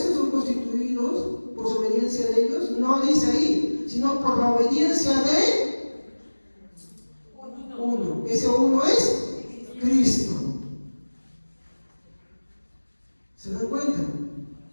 son constituidos, por su obediencia de ellos, no dice ahí, sino por la obediencia de uno. Ese uno es Cristo. ¿Se dan cuenta?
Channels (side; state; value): both; inverted; correlation -1.00